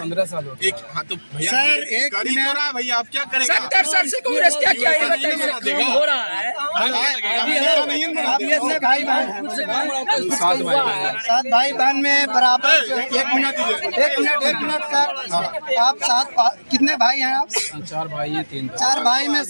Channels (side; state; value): both; inverted; correlation -1.00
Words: साल हो गए। एक हाँ तो भैया सर, एक कर ही तो रहा है भैया, आप क्या करेंगे? 70 साल से कांग्रेस क्या किया है बताइए। हो रहा है अभी ऐसे भाई बहन हैं। सात भाई बहन में बराबर एक मिनट सर, आप कितने भाई हैं आप? 4 भाई हैं 3 चार भाई में